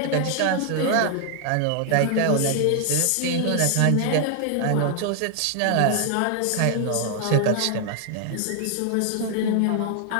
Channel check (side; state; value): both; different; correlation 0.00